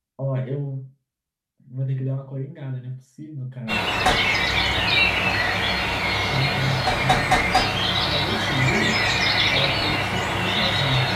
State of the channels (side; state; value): both; identical; correlation 1.00